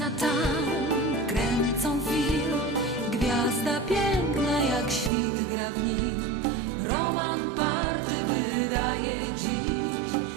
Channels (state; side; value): drops out; left; at 5.1 s